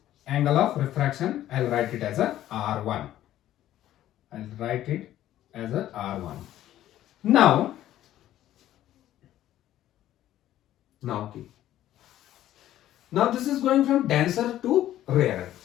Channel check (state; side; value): quieter; right; 13.0 dB